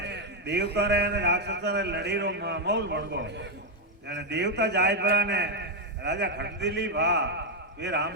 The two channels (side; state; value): both; normal; correlation 0.02